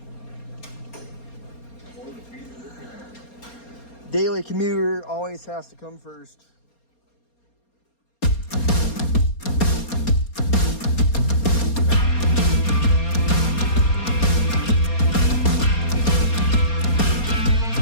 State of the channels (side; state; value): right; late; 4.3 ms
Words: Daily commuter always has to come first.